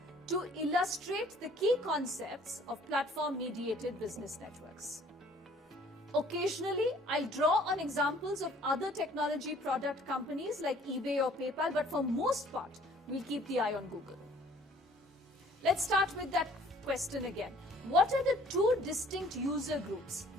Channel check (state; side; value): normal; both; correlation 0.56